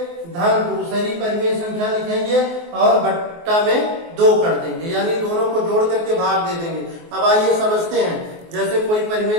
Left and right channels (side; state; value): left; late; 24 ms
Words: धन दूसरी परिमेय संख्या लिखेंगे और बट्टा में 2 कर देंगे, यानी दोनों को जोड़ करके भाग दे देंगे। अब आइए समझते हैं, जैसे कोई परिमेय